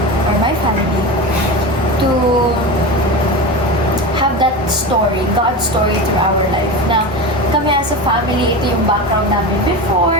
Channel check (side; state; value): both; normal; correlation 0.24